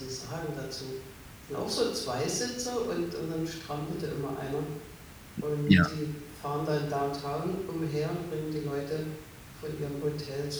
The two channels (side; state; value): both; identical; correlation 1.00